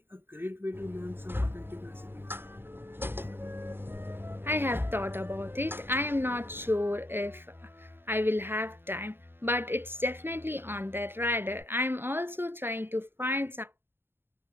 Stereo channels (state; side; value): late; left; 0.11 ms